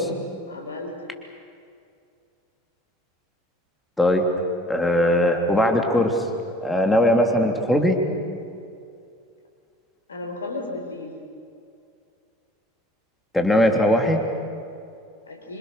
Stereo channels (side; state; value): both; normal; correlation 0.55